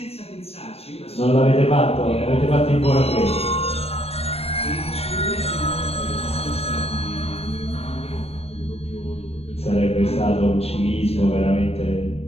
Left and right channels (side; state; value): right; late; 0.29 ms